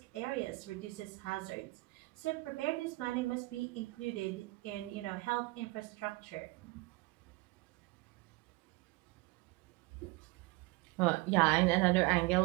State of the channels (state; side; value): quieter; left; 22.8 dB